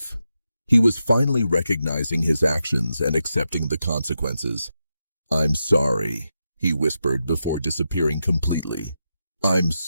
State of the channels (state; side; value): inverted; both; correlation -0.87